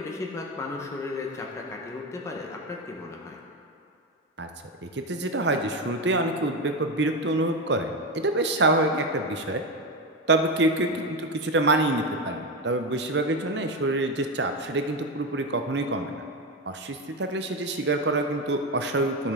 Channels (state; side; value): normal; both; correlation 0.15